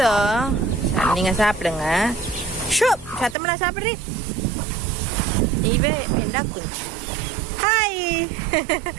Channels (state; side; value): drops out; left; at 3.4 s